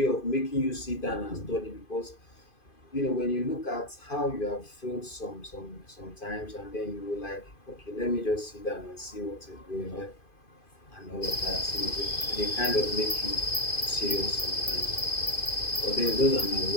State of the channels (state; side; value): late; right; 2.5 ms